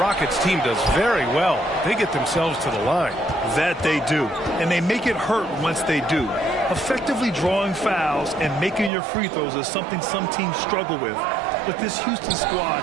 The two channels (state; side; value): drops out; left; at 8.9 s